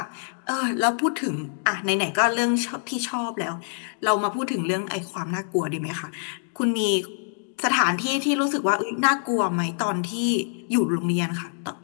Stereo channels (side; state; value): right; silent; digital silence